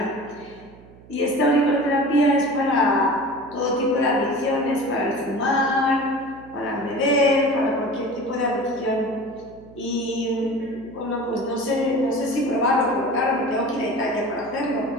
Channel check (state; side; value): noise; right; hum, 22 dB below the sound